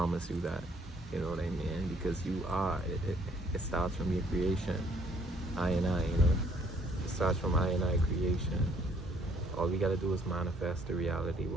you that. You know what I mean? Because you are. It starts from your creation. I, It starts from I creation. All we gotta do is manifest the reality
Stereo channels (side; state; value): both; normal; correlation 0.63